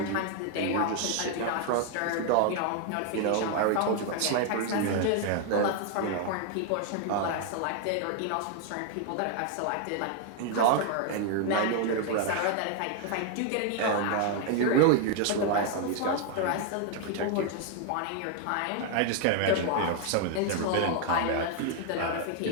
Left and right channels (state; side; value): different; both; correlation 0.00